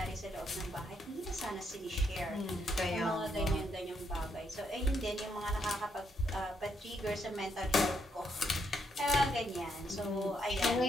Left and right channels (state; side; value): normal; both; correlation 0.76